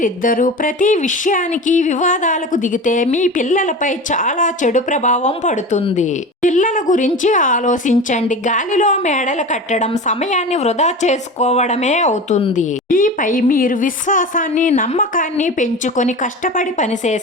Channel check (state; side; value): normal; both; correlation 0.31